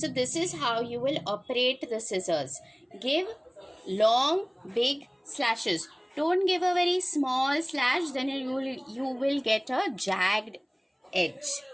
this is how you will operate the scissors. Give long big slashes. Don't give a very small slash, then you will get a jagged edge.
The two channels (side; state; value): both; identical; correlation 1.00